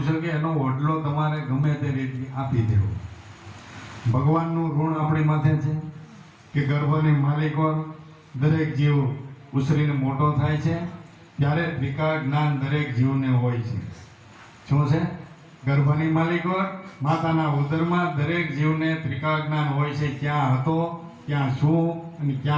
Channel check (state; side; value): identical; both; correlation 1.00